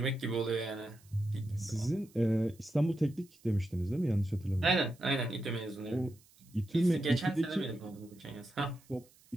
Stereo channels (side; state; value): right; noise; hiss, 28 dB below the sound